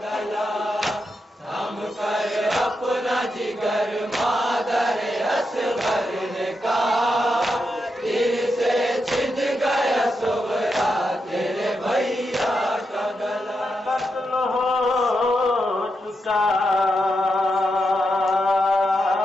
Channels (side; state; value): both; normal; correlation 0.85